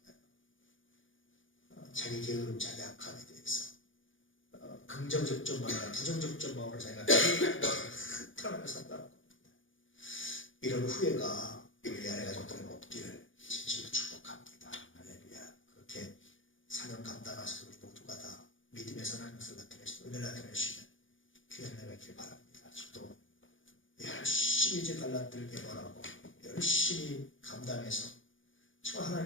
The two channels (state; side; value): late; right; 0.57 ms